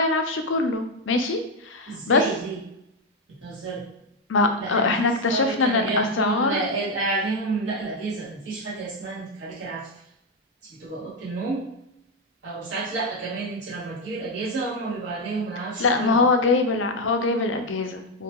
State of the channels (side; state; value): both; normal; correlation 0.06